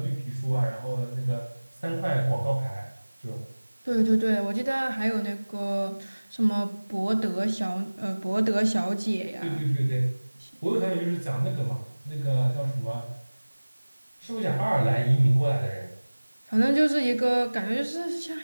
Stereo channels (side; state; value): both; inverted; correlation -1.00